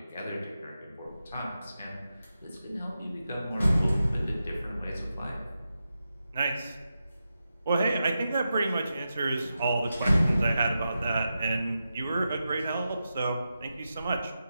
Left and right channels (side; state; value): both; inverted; correlation -0.90